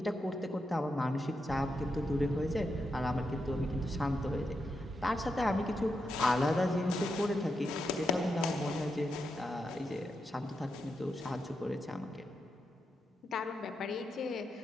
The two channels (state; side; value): normal; both; correlation 0.85